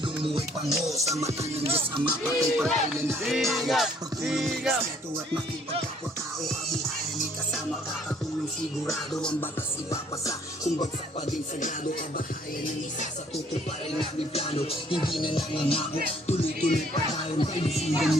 mo ay pango. Sa mata ng Diyos Ama, patay pagkailan na tayo. Pagtulong ng respeto at makipagkapwa-tao, kabuhayan ni kasama, kakatulong sigurado. Ang batas ipapasa, kung bagsak pa din sagrado. Kabahayan ng isa sa tutuparin namin plano. Hindi na nangangako, tuloy-tuloy pa tayo. Kaibigan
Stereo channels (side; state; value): both; normal; correlation 0.62